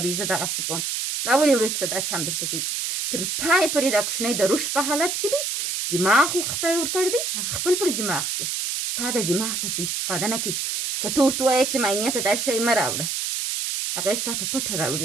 دی، زه دغسې کوم. دا اولې ورځ څه دا چم درته کوي. تر پای پورې دا کوچنی د رشد په حالت کې دی، دماغ خدای ورکړی دی، هغه خپل پر دماغ ځي. ستا د دماغ څه استفاده نه کوي. که ته ورته ووایې چې معاینې ته دا شی مه راوړه، هغه یې ستا په پټه راوړي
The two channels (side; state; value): right; noise; hiss, 1 dB below the sound